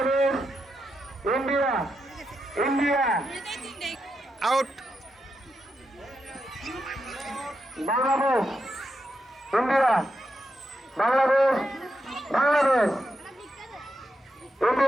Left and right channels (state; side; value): normal; both; correlation 0.85